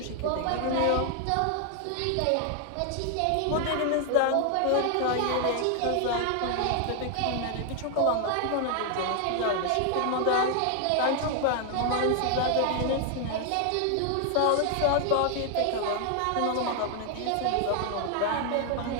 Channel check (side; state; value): both; different; correlation 0.00